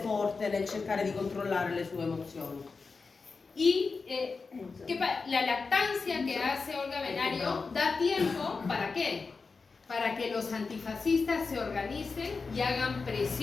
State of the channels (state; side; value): quieter; right; 4.5 dB